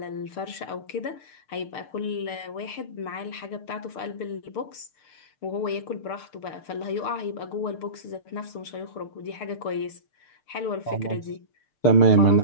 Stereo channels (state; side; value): late; right; 6.7 ms